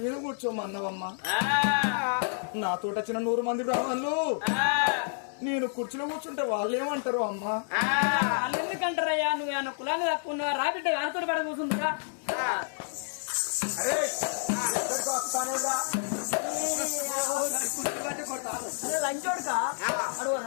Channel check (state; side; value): silent; right; 58 dB below the other